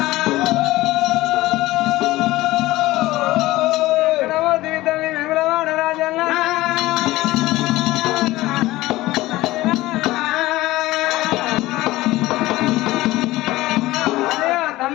ఎక్కడవో దిగుతుంది విమలవాడ రాజన్న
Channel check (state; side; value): quieter; right; 17.8 dB